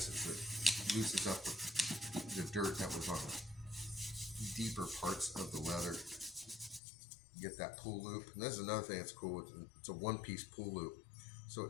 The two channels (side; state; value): right; drops out; at 6.8 s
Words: is it loosens up the dirt that was on the deeper parts of the leather. Get that pull loop. And this is another thing that's cool. It's a one-piece pull loop. So